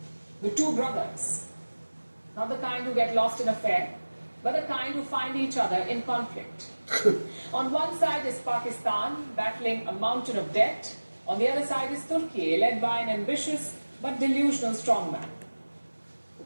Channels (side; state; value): both; inverted; correlation -1.00